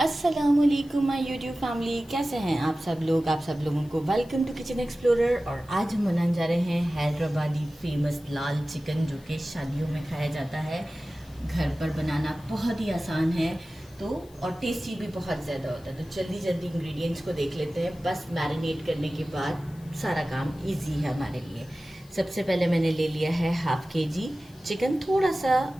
माय यूट्यूब फैमिली, कैसे हैं आप सब लोग। आप सब लोगों को वेलकम टू किचन एक्सप्लोरर। और आज हम बनाने जा रहे हैं हैदराबादी फेमस लाल चिकन, जो कि शादियों में खाया जाता है। घर पर बनाना बहुत ही आसान है तो और टेस्टी भी बहुत ज़्यादा होता है। तो जल्दी जल्दी इंग्रेडिएंट्स को देख लेते हैं। बस मैरिनेट करने के बाद सारा काम ईजी है हमारे लिए। सबसे पहले मैंने ले लिया है हाफ केजी चिकन, थोड़ा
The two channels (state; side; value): noise; left; hiss, 27 dB below the sound